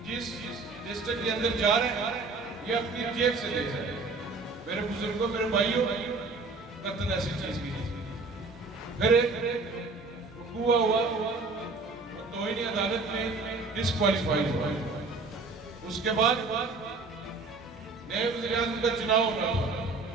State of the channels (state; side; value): quieter; left; 3.8 dB